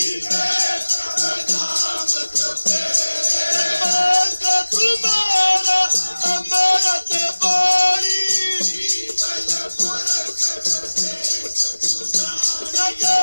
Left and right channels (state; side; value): inverted; both; correlation -1.00